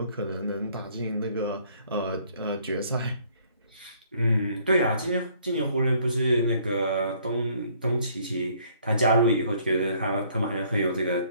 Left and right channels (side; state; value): both; inverted; correlation -0.62